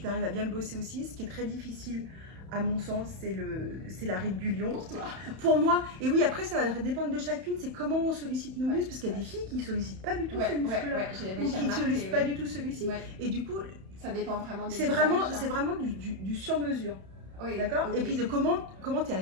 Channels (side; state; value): left; late; 31 ms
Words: t'arrives à bien le bosser aussi. Ce qui est très difficile, à mon sens, c'est la ride du lion. Pour toi. Pour moi. Et oui, après, ça va dépendre de chacune. C'est comment on sollicite nos muscles. Parce qu'il y a des filles qui ne sollicitent pas du tout ce muscle-là. Ou qui ne sollicitent pas du tout celui-ci. Et du coup, ça dépend vraiment des c'est vraiment du sur-mesure. Oui, d'accord. Okay. Et puis de comment tu es